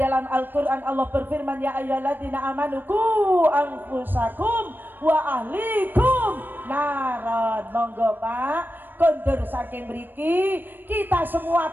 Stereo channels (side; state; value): left; late; 0.093 ms